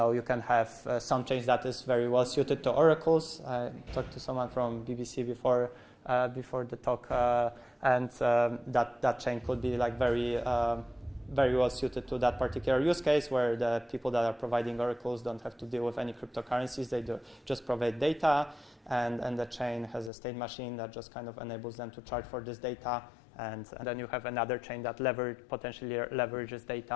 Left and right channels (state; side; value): drops out; right; at 20.1 s